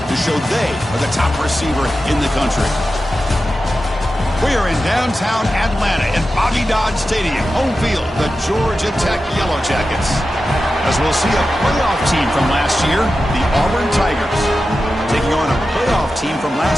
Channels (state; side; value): normal; both; correlation 0.92